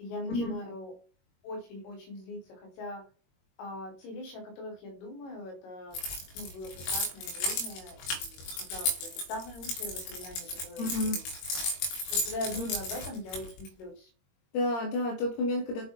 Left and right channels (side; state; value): right; late; 22 ms